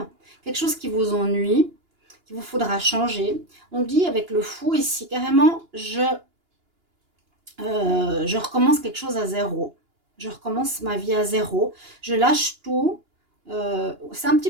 Quelque chose qui vous ennuie, qu'il vous faudra changer. On dit avec le fou ici, carrément, je recommence quelque chose à zéro. Je recommence ma vie à zéro. Je lâche tout. C'est un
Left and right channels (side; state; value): left; late; 2.9 ms